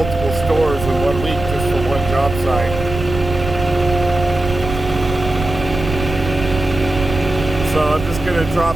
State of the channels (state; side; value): noise; right; rumble, 8 dB below the sound